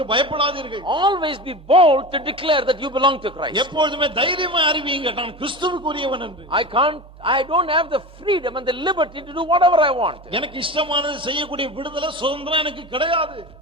பயப்படாதீர்கள். Always be bold to declare that you belong to Christ. எப்பொழுதுமே தைரியமா அறிவியுங்க, நான் கிறிஸ்துவுக்குரியவன் என்று. I don't have the freedom and the liberty to do whatever I want. எனக்கு இஷ்டமானது செய்யக்கூடிய விடுதலை, சுதந்திரம் எனக்கு கிடையாது.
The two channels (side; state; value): both; normal; correlation 0.28